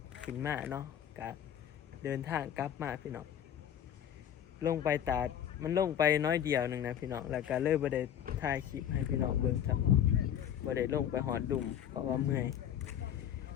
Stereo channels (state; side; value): quieter; right; 9.8 dB